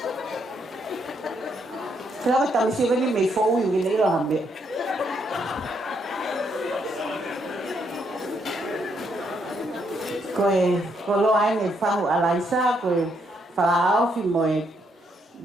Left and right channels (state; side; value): normal; both; correlation 0.75